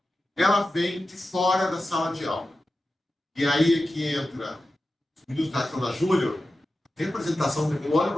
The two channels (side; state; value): both; normal; correlation 0.93